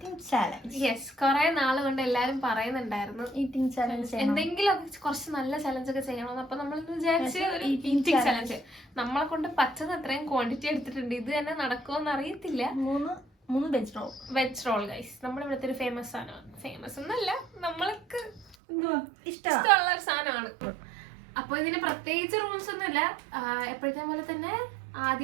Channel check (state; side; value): drops out; left; at 18.6 s